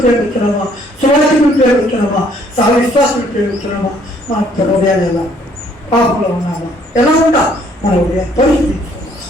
ప్రేమిస్తున్నామా? సువాసికులు ప్రేమిస్తున్నామా? సహ విశ్వాసులు ప్రేమిస్తున్నామా? మన హృదయాలు ఎలా పాపంలో ఉన్నామా? ఎలా ఉంటా మన హృదయం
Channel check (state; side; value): normal; both; correlation 0.63